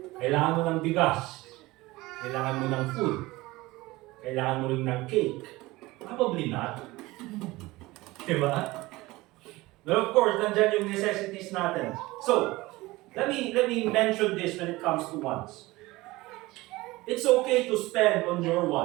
Kailangan mo ng bigas. Kailangan mo ng food. Kailangan mo rin ng cake. Probably not. Diba? But of course, nandyan yung necessities natin. So, let me mention this when it comes to wants. It's okay to spend on your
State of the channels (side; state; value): left; quieter; 20.1 dB